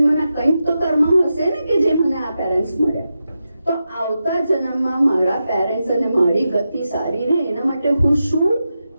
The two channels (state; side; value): inverted; both; correlation -0.89